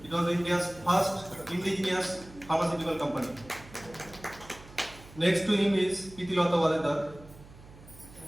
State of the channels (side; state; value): right; noise; hum, 20 dB below the sound